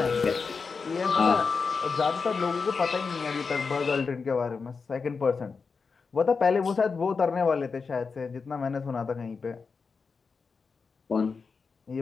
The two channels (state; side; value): quieter; right; 5.0 dB